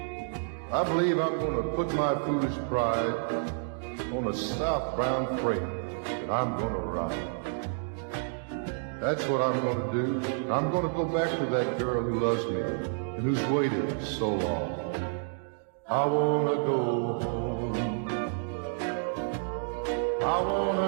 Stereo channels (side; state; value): left; silent; digital silence